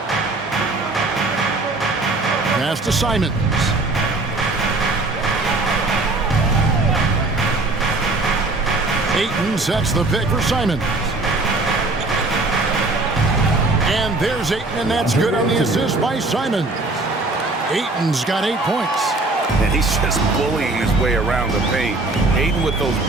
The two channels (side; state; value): left; quieter; 3.1 dB